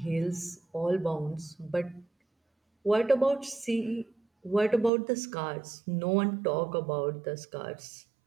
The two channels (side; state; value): left; drops out; at 4.9 s